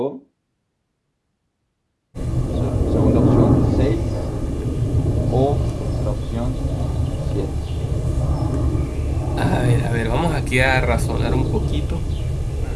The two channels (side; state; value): both; identical; correlation 1.00